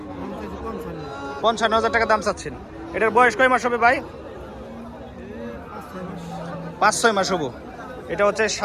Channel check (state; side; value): identical; both; correlation 1.00